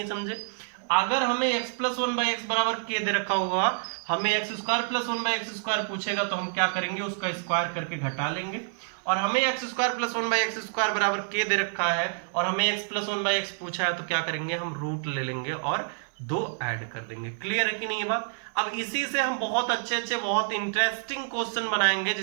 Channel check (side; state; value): left; silent; digital silence